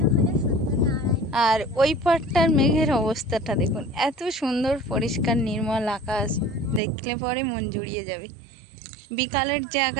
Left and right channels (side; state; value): left; drops out; at 6.8 s